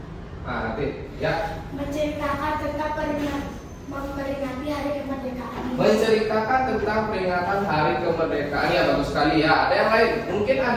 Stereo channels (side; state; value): both; identical; correlation 1.00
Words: Nah, Ratih, ya. Menceritakan tentang memperingati hari kemerdekaan. Menceritakan tentang peringatan Hari Kemerdekaan, ya bagus sekali ya. Ada yang lain? Mungkin